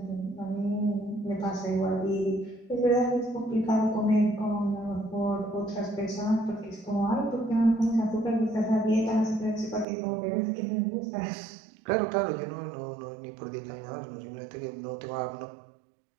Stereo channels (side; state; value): left; drops out; at 9.9 s